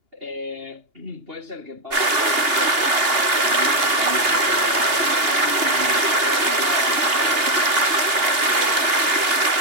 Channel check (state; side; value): late; left; 2.8 ms